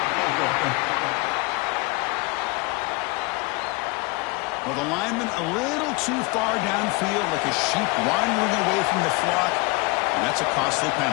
the lineman a little too far downfield, like a sheep wandering away from the flock, and that's a costly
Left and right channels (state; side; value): quieter; right; 26.2 dB